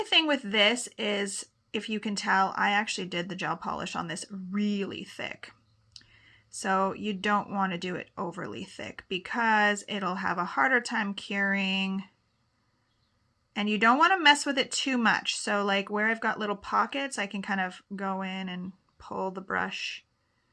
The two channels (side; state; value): both; identical; correlation 1.00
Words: thing with this is, if you can tell, I actually did the gel polish on this really thick. So you don't want to do it overly thick because it'll have a harder time curing. And you don't want to mess with it too much. So like where I've got little pockets, I can kind of go in and pull the brush